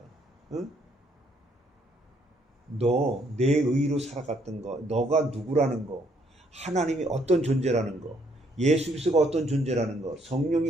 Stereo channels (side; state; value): both; normal; correlation 0.69